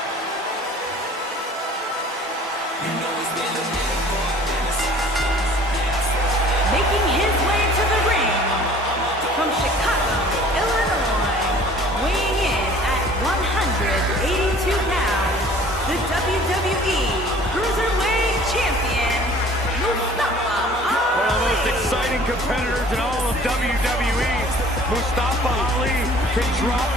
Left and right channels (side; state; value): both; normal; correlation 0.50